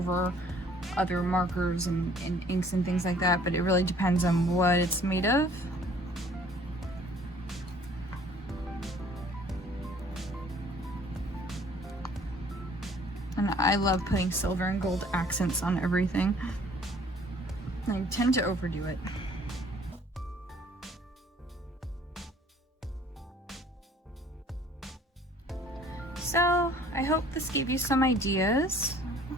other markers and inks and things like that, but it really depends on what it's made of. And I love putting silver and gold accents on everything. I tend to overdo it. So I hope this gave you some ideas.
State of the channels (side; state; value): both; normal; correlation 0.56